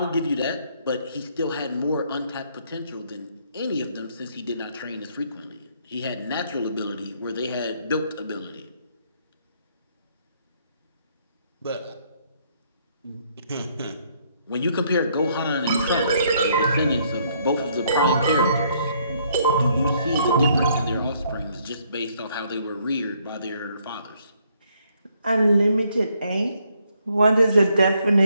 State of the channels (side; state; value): both; inverted; correlation -0.69